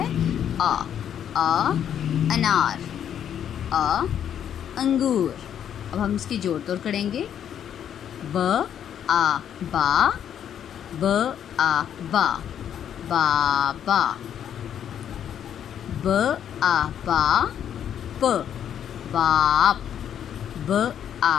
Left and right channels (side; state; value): right; quieter; 9.4 dB